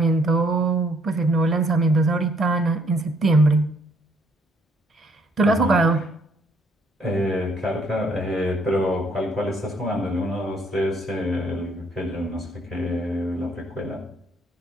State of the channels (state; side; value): normal; both; correlation 0.66